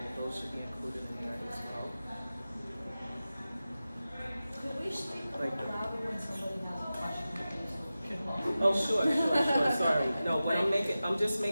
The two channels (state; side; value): inverted; both; correlation -0.94